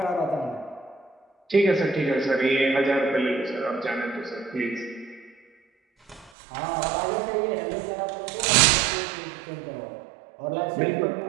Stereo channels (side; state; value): left; drops out; at 6.3 s